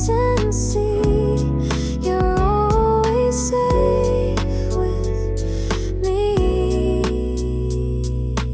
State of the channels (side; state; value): both; identical; correlation 1.00